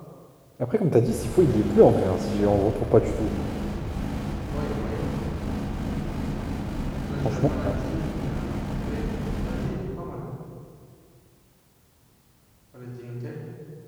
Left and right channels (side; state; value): both; identical; correlation 1.00